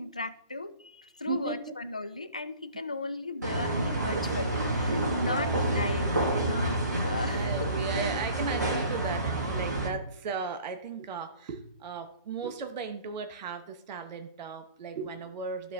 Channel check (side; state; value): both; inverted; correlation -0.47